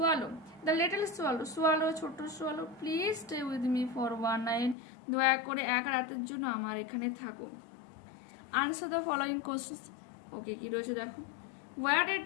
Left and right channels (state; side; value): drops out; right; at 4.8 s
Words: the little swallow, swallow ছোট্ট swallow, please stay with me for one night, দয়া করে এক রাতের জন্য আমার এখানে থাকো। Answer the following questions. Okay, কি রয়েছে দেখো। Where did